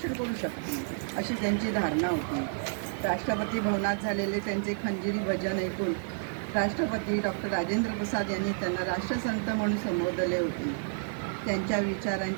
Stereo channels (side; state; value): left; silent; digital silence